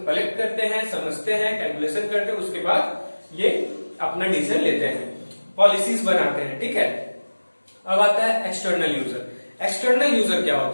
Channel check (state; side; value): inverted; both; correlation -1.00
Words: कलेक्ट करते हैं, समझते हैं, कैलकुलेशन करते हैं, उसके बाद ये अपना डिसीजन लेते हैं, पॉलिसीज बनाते हैं। ठीक है, अब आता है एक्सटर्नल यूजर। एक्सटर्नल यूजर क्या